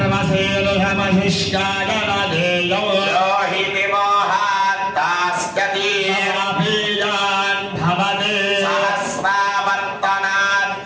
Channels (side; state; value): both; identical; correlation 1.00